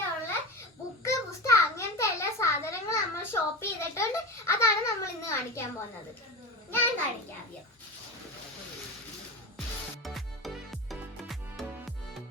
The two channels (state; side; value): normal; both; correlation 0.25